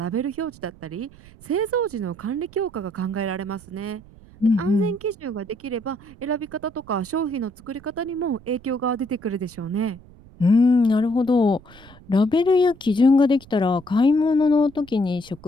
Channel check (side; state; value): right; noise; rumble, 23 dB below the sound